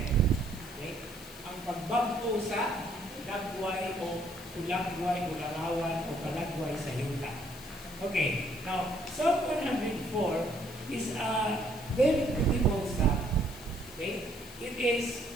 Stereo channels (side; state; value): left; noise; hiss, 18 dB below the sound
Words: Okay? Ang pagbago sa lagway o ulagway o larawan o palagway sa yuta. Okay, now Psalm 104 is a very beautiful psalm. Okay? It is